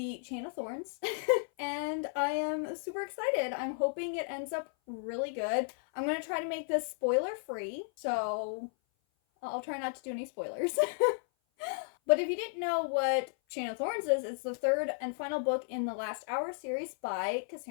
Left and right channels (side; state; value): right; silent; 55 dB below the other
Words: Chain of Thorns. And I am super excited. I'm hoping it ends up really good. I'm going to try to make this spoiler free, so I'll try not to do any spoilers. But if you didn't know what Chain of Thorns is, it's the third and final book in the Last Hour series by